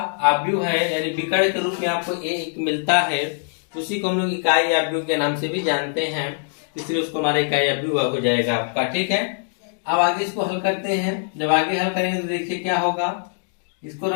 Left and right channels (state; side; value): silent; right; digital silence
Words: आव्यूह है यानी विकर्ण के रूप में आपको एक मिलता है, उसी को हम लोग इकाई आव्यूह के नाम से भी जानते हैं, इसलिए उसको हमारा इकाई आव्यूह हो जाएगा आपका। ठीक है, अब आगे इसको हल करते हैं। जब आगे हल करेंगे तो देखिए क्या होगा, इसको